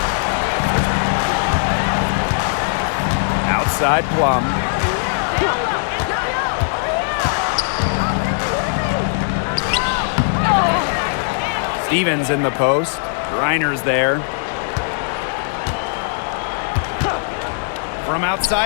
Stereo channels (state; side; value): silent; right; digital silence